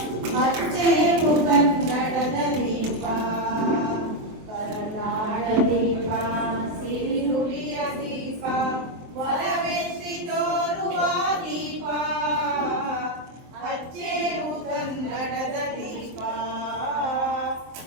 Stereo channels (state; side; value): late; left; 23 ms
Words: ಹಚ್ಚೇವು ಕನ್ನಡದ ದೀಪ ಕರುನಾಡ ದೀಪ ಸಿರಿನುಡಿಯ ದೀಪ ಒಲವೆತ್ತಿ ತೋರುವ ದೀಪ ಹಚ್ಚೇವು ಕನ್ನಡದ ದೀಪ